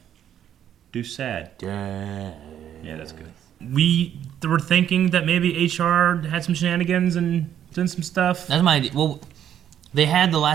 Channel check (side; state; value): left; quieter; 10.1 dB